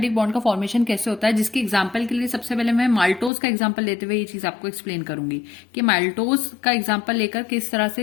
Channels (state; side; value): drops out; right; at 3.3 s